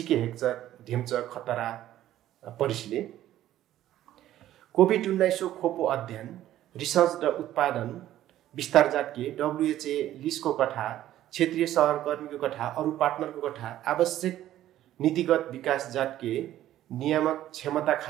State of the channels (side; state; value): left; quieter; 13.1 dB